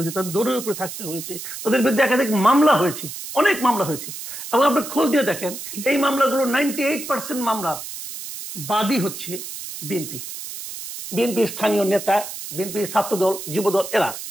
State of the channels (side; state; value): right; noise; hiss, 9 dB below the sound